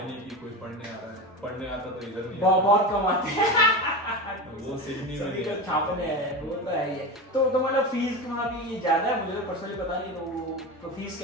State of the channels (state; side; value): normal; both; correlation 0.24